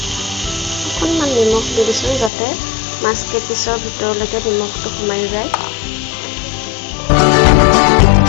অকণমান নিমখ দি দিছোঁ যাতে মাছ কেইপিচৰ ভিতৰলৈকে নিমখটো সোমাই যায়।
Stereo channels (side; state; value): right; drops out; at 2.3 s